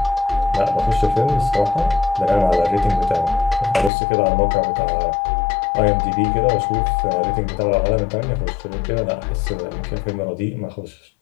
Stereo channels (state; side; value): drops out; right; at 3.9 s